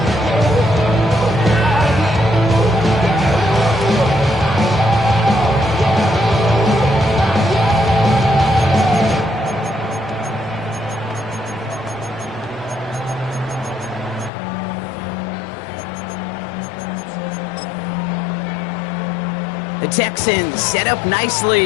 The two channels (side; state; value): right; drops out; at 14.3 s